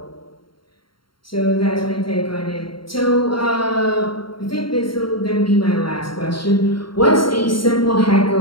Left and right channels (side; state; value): right; late; 0.73 ms